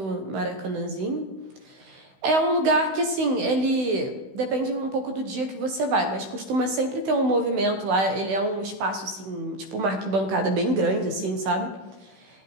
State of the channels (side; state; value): left; late; 16 ms